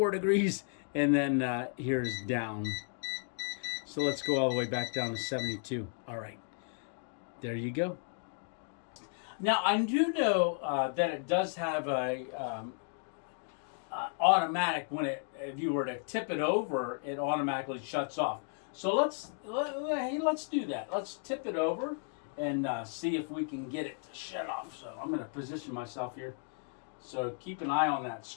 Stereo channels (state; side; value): silent; right; 55 dB below the other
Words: degrees, and then here's down. So let's go all the way back down to 72. All right, there you go. Now I do know that it does have a automatic, if you were to tip it over, it automatically shuts off. So let's do that. Let's tip it over and see if we can get it to shut off. So I'm going to position myself here. So keep an eye on that